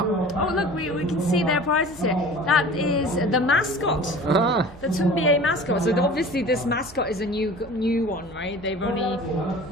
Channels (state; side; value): noise; right; hum, 22 dB below the sound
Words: Oh, look, we can see their prizes here. That is the mascot, the Tunbia mascot. So obviously this mascot is a new one, right?